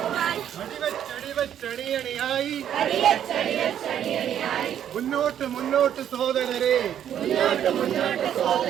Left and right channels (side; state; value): left; quieter; 10.0 dB